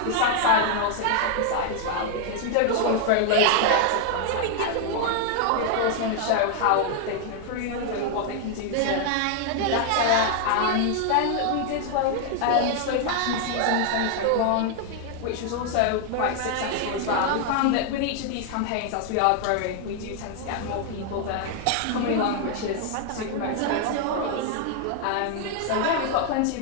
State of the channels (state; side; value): different; both; correlation 0.00